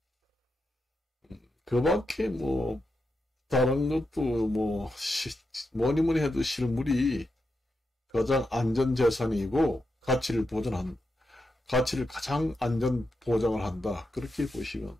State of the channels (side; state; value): both; normal; correlation 0.86